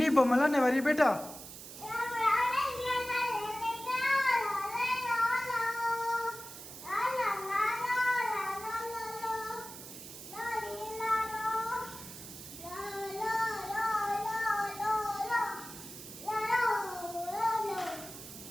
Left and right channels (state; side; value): noise; right; hiss, 13 dB below the sound